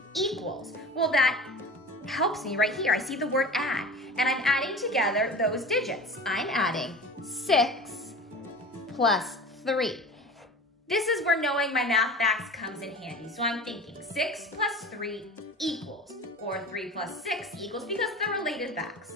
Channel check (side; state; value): both; normal; correlation 0.36